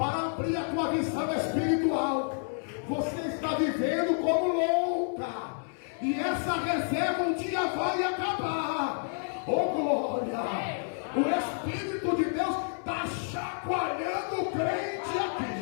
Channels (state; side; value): silent; right; 58 dB below the other